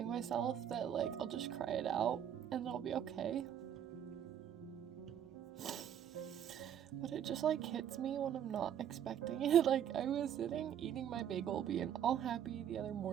myself that, like, I'll just cry it out and it'll be okay. But it just, like, hits me when I'm not expecting it. Like, I was sitting, eating my bagel, being all happy the other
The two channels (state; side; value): quieter; left; 9.5 dB